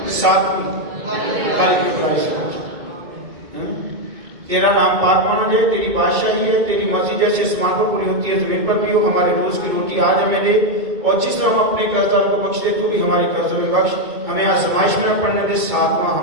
7ویں، تیرا نام پاک مانا جائے، تیری بادشاہی ہے، تیری مرضی جیسے آسمان پر پوری ہوتی ہے زمین پر بھی ہو، ہمارے روز کی روٹی آج ہمیں دے، اور جس طرح ہم اپنے قرضداروں کو بخش دے تو بھی ہمارے قرضوں میں بخش، ہمیں آزمائش میں نہ پڑنے دے، 7واں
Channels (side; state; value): left; late; 2.6 ms